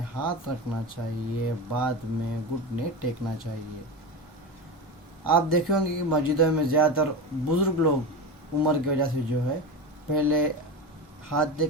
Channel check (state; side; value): normal; both; correlation 0.22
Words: ہاتھ رکھنا چاہیے، بعد میں گھٹنے ٹیکنا چاہیے۔ آپ دیکھیں گے کہ مسجدوں میں زیادہ تر بزرگ لوگ عمر کی وجہ سے جو ہے پہلے ہاتھ